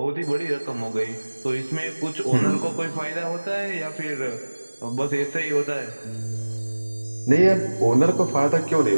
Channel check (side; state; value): both; inverted; correlation -1.00